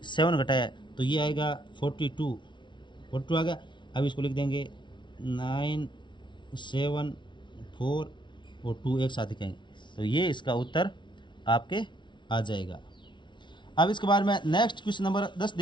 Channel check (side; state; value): right; late; 0.23 ms